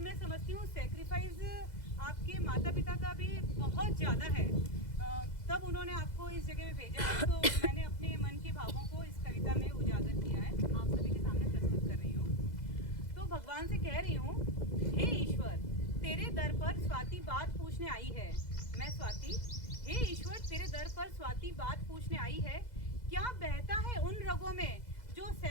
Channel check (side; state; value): right; late; 2.0 ms